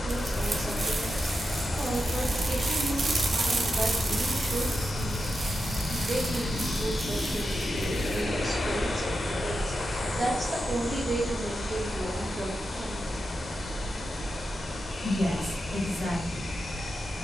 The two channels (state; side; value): normal; both; correlation 0.89